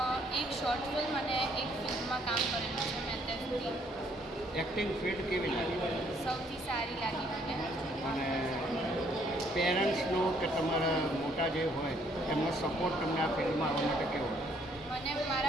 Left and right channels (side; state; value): both; normal; correlation 0.66